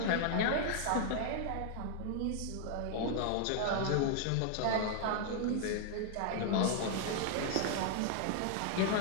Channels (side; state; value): both; different; correlation 0.00